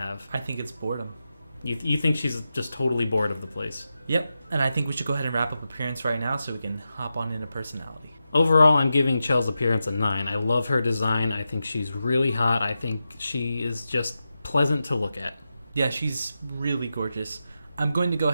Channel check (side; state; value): both; inverted; correlation -0.90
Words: I think it's boredom. You think she's just totally bored of the place? Yep, and I think we should go ahead and wrap up appearance right now so we can hop on into personality. Overall, I'm giving Chel's appearance a 9. I love her design. I think she's really hot. I think she is just pleasant to look at. Yeah, she's really gorgeous. I'm going to go